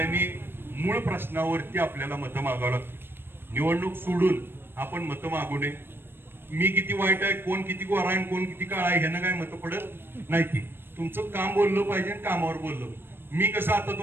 मूळ प्रश्नावरती आपल्याला मतं मागावं लागतं. निवडणूक सोडून आपण मतं मागू नये. मी किती वाईट आहे, कोण किती गोरा आहे, कोण किती काळा आहे ह्यानं काय मतं पडत नाही. ती तुमचं काम बोललं पाहिजे, कामावर बोललं. मी कसं आता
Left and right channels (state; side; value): late; left; 0.10 ms